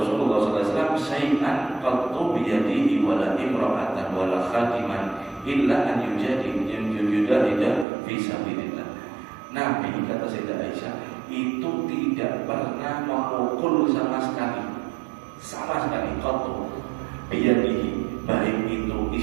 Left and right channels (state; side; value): drops out; left; at 7.9 s